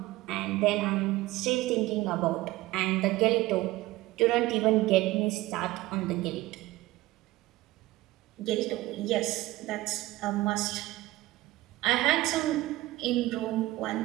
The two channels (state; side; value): quieter; left; 18.2 dB